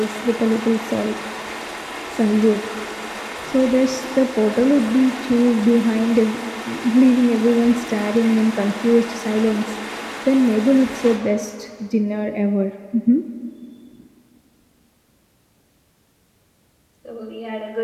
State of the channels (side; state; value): both; identical; correlation 1.00